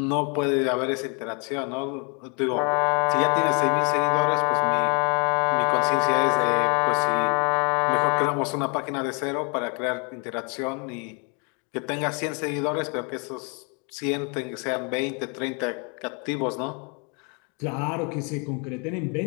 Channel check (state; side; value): quieter; right; 35.2 dB